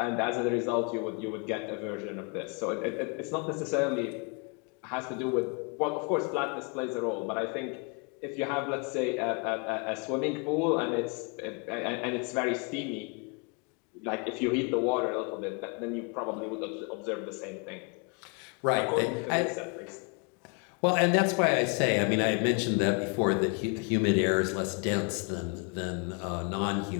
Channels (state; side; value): quieter; right; 33.8 dB